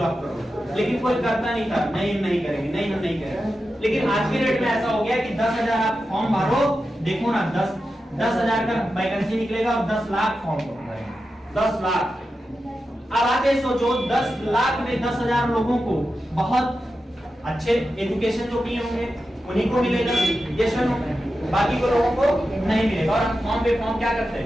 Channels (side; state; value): both; normal; correlation 0.91